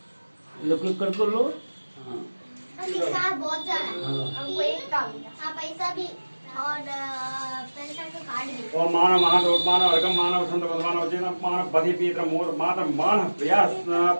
लोग कर लो। हाँ पैसा बहुत ज्यादा है। हाँ। हमको एक काम हाँ पैसा भी और पैसा का कार्ड भी। ओम मानव महादोत्मान अर्घम मानव संत भगवान वचन मानव बधि पीत्र मोर मातर मान प्रयास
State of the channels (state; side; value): inverted; both; correlation -1.00